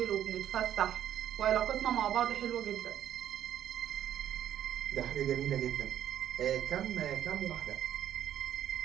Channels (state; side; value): quieter; left; 10.7 dB